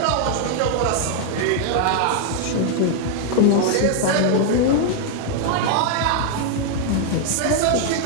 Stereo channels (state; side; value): different; both; correlation 0.00